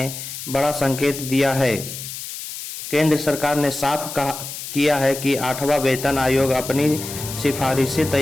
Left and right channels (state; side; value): noise; left; hiss, 9 dB below the sound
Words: बड़ा संकेत दिया है। केंद्र सरकार ने साफ किया है कि 8वां वेतन आयोग अपनी सिफारिशें